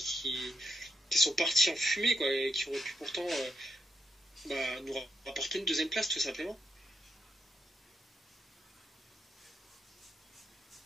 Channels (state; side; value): normal; both; correlation 0.82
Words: sont partis en fumée, quoi, et qui auraient pu pourtant nous rapporter une deuxième place, tout simplement.